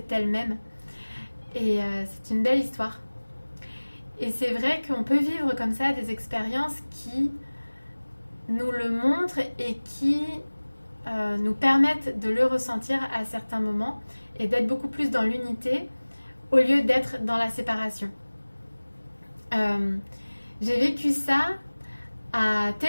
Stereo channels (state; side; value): inverted; both; correlation -1.00